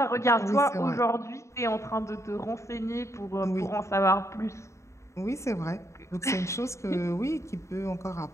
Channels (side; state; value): right; late; 0.14 ms